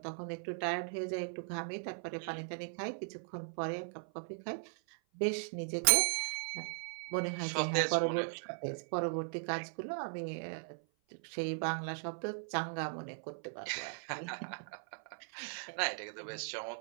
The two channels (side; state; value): left; silent; 52 dB below the other